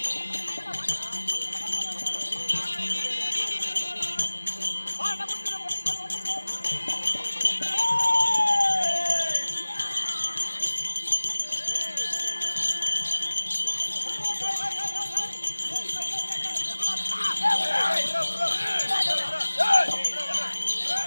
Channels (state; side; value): inverted; both; correlation -1.00